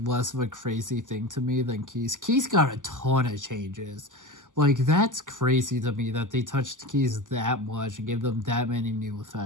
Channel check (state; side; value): late; left; 0.87 ms